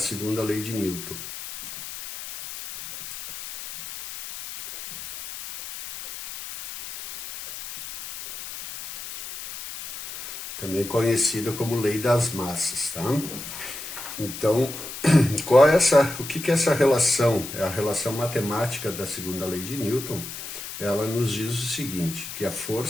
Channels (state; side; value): noise; left; hiss, 10 dB below the sound